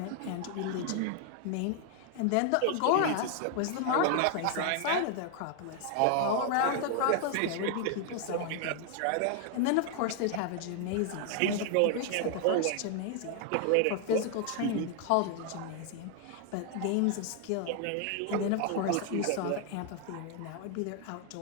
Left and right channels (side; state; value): both; different; correlation 0.00